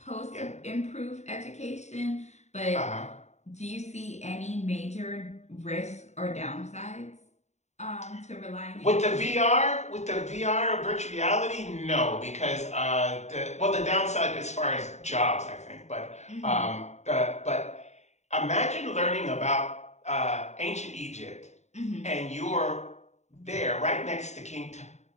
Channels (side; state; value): right; late; 0.33 ms